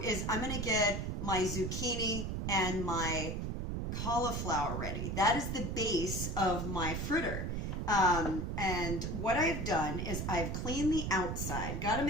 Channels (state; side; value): noise; right; rumble, 2 dB below the sound